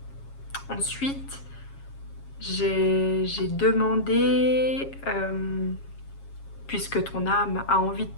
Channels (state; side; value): late; right; 7.3 ms